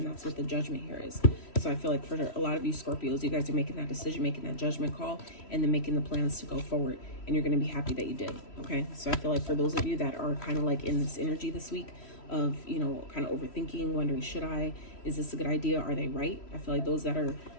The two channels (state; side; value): late; right; 3.1 ms